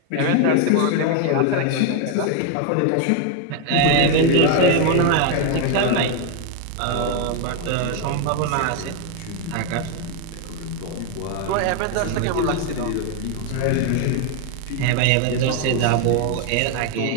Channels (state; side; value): different; both; correlation 0.01